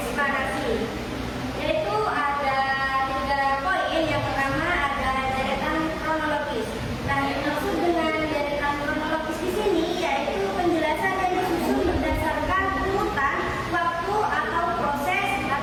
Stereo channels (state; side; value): identical; both; correlation 1.00